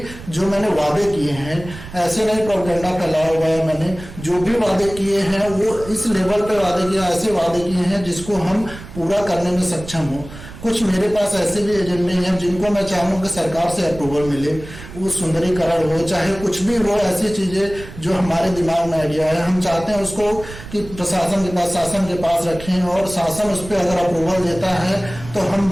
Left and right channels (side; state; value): right; noise; rumble, 14 dB below the sound